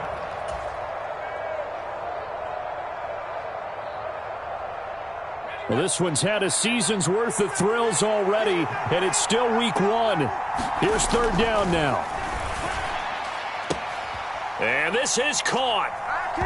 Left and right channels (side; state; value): both; identical; correlation 1.00